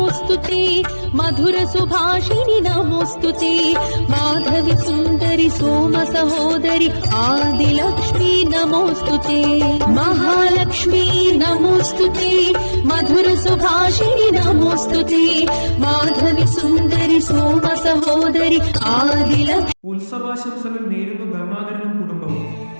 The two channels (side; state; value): both; inverted; correlation -1.00